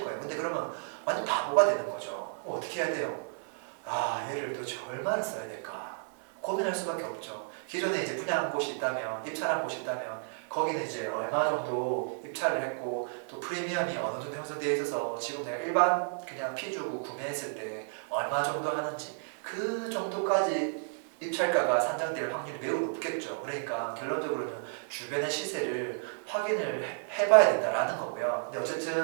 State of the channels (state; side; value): silent; left; 56 dB below the other